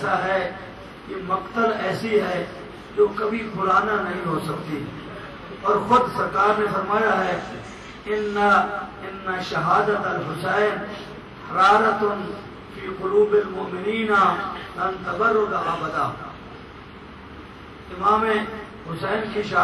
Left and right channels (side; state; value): both; identical; correlation 1.00